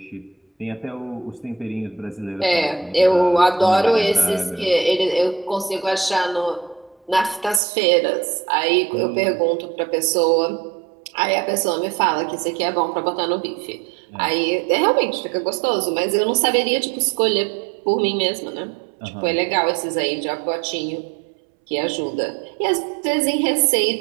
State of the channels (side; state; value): left; drops out; at 7.6 s